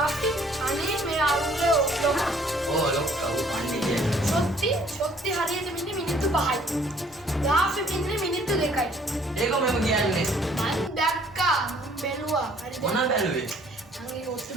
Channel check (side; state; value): both; normal; correlation 0.59